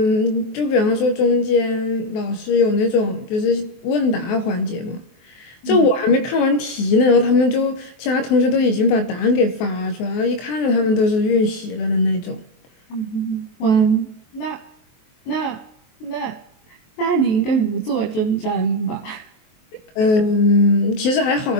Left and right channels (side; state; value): right; late; 23 ms